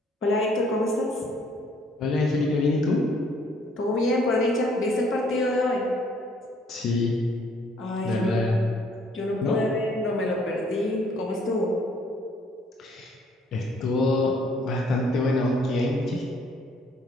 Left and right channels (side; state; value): both; normal; correlation 0.63